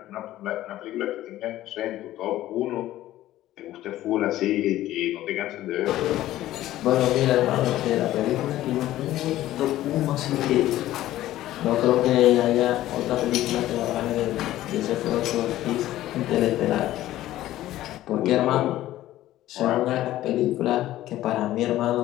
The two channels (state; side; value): quieter; right; 14.5 dB